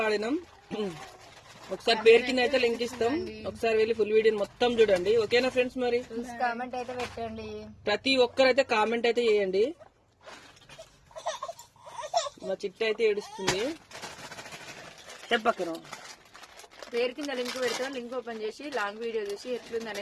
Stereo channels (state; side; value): identical; both; correlation 1.00